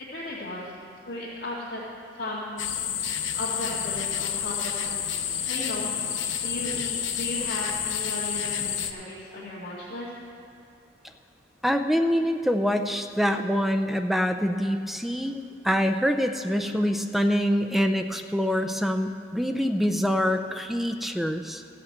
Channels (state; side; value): normal; both; correlation 0.70